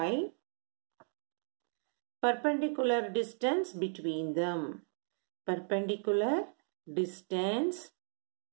perpendicular distance between them. Perpendicular distance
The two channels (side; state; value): left; silent; digital silence